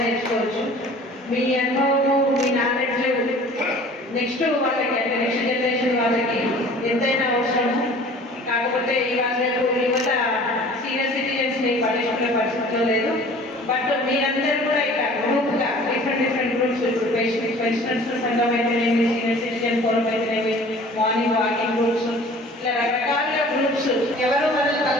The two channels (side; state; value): both; normal; correlation 0.47